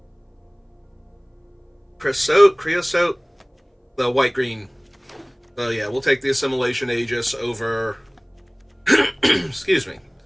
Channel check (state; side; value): identical; both; correlation 1.00